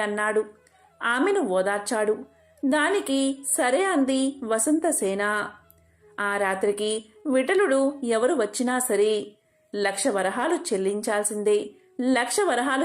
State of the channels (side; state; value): both; identical; correlation 1.00